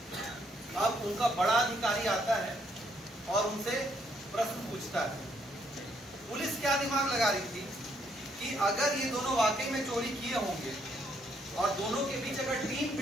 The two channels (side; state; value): both; normal; correlation 0.71